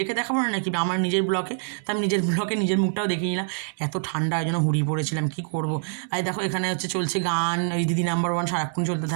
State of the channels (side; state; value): left; silent; 62 dB below the other